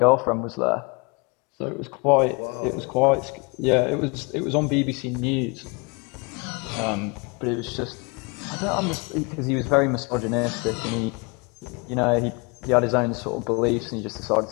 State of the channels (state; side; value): quieter; right; 30.4 dB